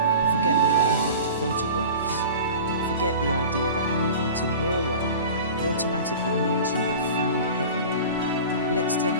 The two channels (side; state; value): both; inverted; correlation -0.37